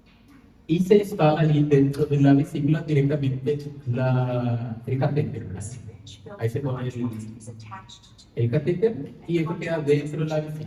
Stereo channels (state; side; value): identical; both; correlation 1.00